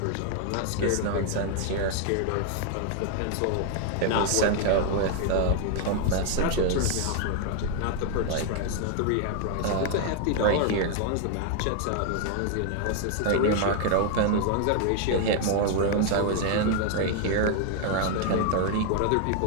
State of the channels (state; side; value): different; both; correlation 0.00